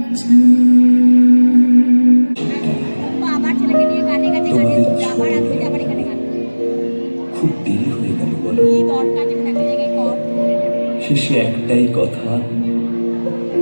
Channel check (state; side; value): inverted; both; correlation -1.00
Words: চায়। খুব দেরি হয়ে গেল বলো। শেষে একটাই কথা